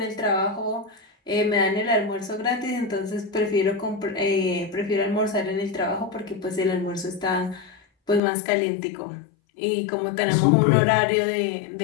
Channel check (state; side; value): drops out; right; at 8.2 s